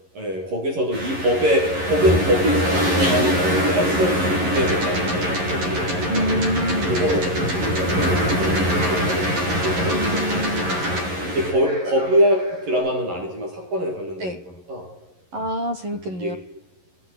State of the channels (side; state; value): left; late; 11 ms